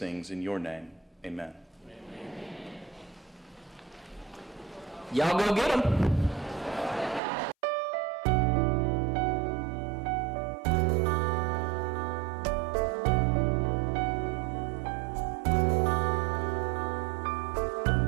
in your name. Amen. Y'all go get them.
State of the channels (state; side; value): drops out; left; at 7.2 s